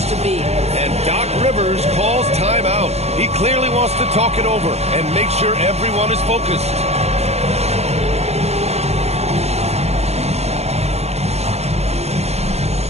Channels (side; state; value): left; late; 0.31 ms